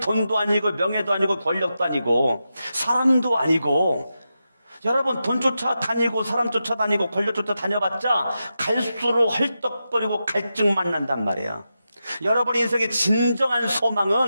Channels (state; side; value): inverted; both; correlation -0.89